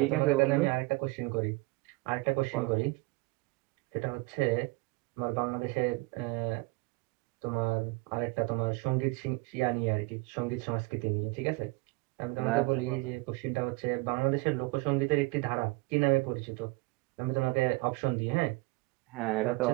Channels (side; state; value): left; quieter; 24.1 dB